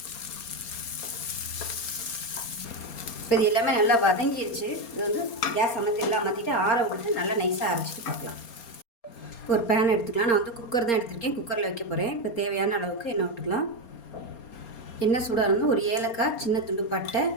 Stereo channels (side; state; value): right; late; 4.3 ms